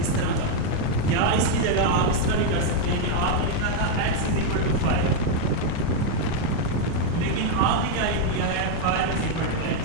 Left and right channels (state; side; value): different; both; correlation 0.01